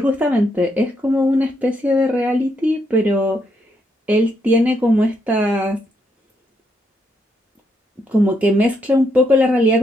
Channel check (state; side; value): normal; both; correlation 0.77